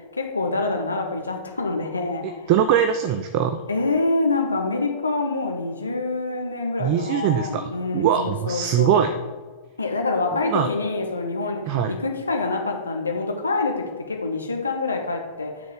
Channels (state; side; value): inverted; both; correlation -0.37